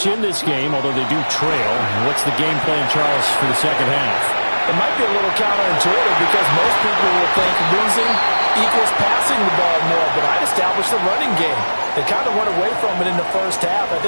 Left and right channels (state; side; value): inverted; both; correlation -1.00